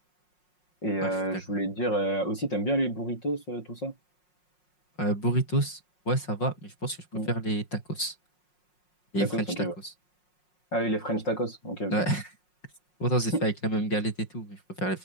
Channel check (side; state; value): right; late; 5.5 ms